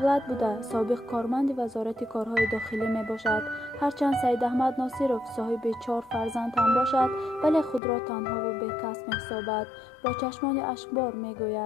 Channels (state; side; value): drops out; right; at 7.8 s